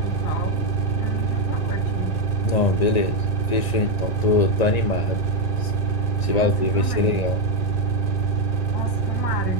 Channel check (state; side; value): late; right; 1.9 ms